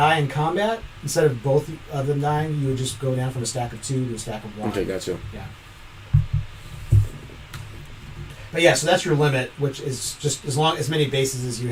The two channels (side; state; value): both; identical; correlation 1.00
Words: in combat, instead of both of them dying, you would just go down from a stack of 2 to a stack of 1. Okay, gotcha. Yeah. But yeah, so that's your limit, which is just as many bases as you